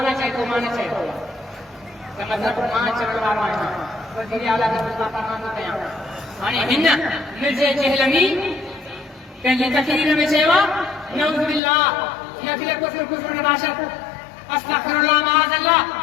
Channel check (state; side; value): drops out; right; at 11.6 s